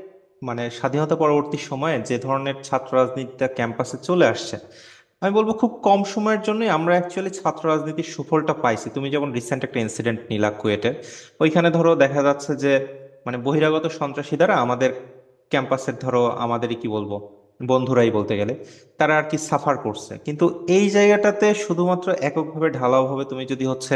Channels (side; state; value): both; identical; correlation 1.00